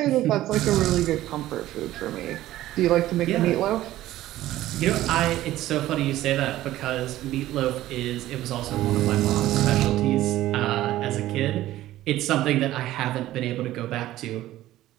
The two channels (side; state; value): left; quieter; 14.8 dB